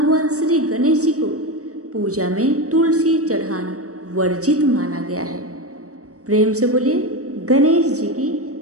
श्री गणेश जी को पूजा में तुलसी चढ़ाना वर्जित माना गया है। प्रेम से बोलिए गणेश जी की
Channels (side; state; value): left; late; 0.66 ms